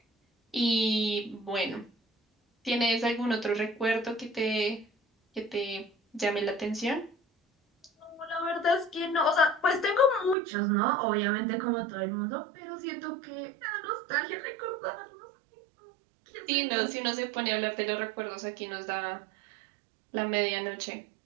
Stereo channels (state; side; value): drops out; left; at 10.4 s